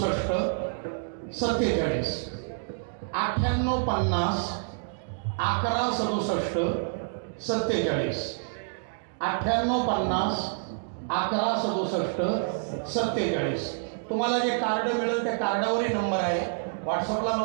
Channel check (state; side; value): silent; left; digital silence